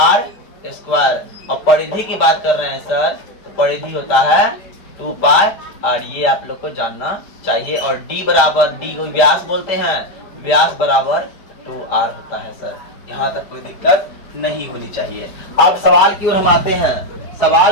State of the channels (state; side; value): late; right; 4.7 ms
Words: स्क्वायर। और परिधि की बात कर रहे हैं सर, तो परिधि होता है 2 पाई आर। ये आप लोग को जानना चाहिए। और डी बराबर, डी को व्यास बोलते हैं, व्यास बराबर 2r होता है सर। यहाँ तक कोई दिक्कत नहीं होनी चाहिए। अब सवाल की ओर हम आते हैं।